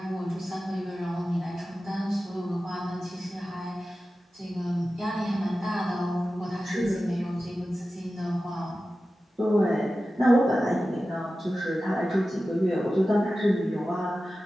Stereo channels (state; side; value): normal; both; correlation 0.94